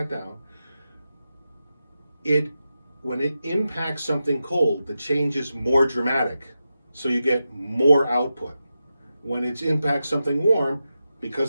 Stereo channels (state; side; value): inverted; both; correlation -0.90